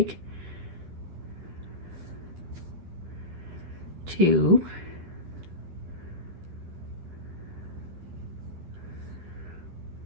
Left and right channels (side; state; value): left; late; 11 ms